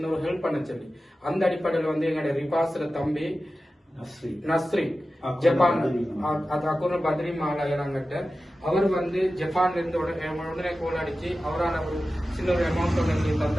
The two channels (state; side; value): normal; both; correlation 0.94